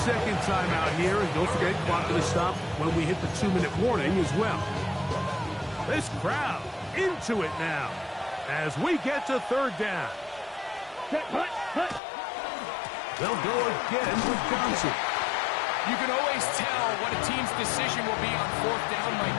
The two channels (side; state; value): right; drops out; at 12.0 s